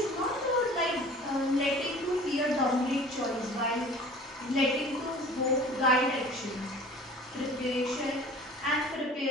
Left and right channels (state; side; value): normal; both; correlation 0.45